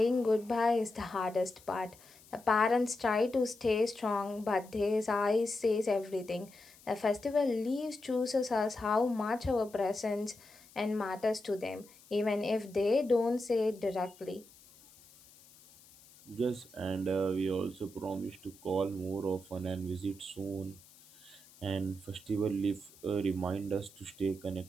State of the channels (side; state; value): left; noise; hiss, 24 dB below the sound